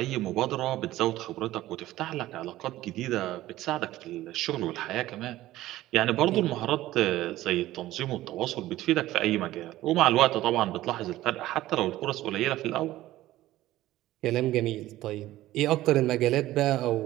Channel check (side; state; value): left; quieter; 15.6 dB